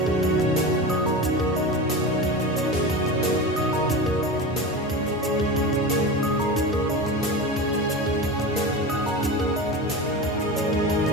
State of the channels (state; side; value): normal; both; correlation 0.27